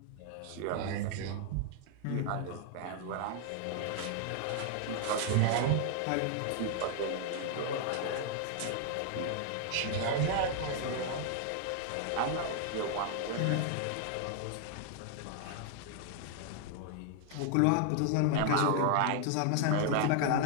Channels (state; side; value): different; both; correlation 0.00